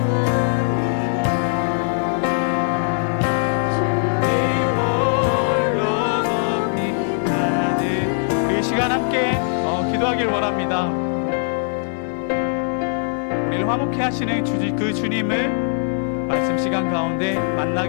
기도하길 원합니다. 우리를 화목케 하시는 그 주님을 말씀 시간 가운데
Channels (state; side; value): silent; right; 65 dB below the other